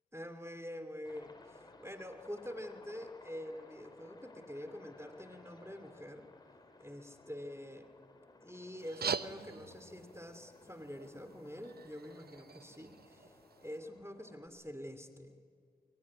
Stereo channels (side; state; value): both; normal; correlation 0.57